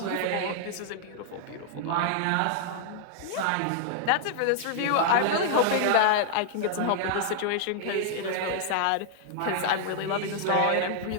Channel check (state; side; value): different; both; correlation -0.01